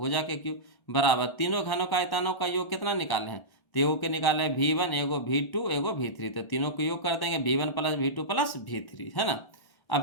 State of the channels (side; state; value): right; late; 1.1 ms